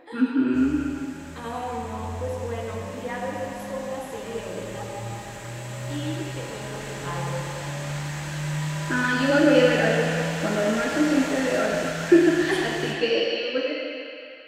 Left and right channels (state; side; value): identical; both; correlation 1.00